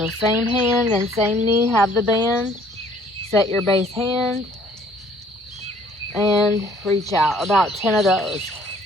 same hand and same knee, have the band. Set your base hand and reach out. About 10 of those.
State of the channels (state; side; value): normal; both; correlation 0.59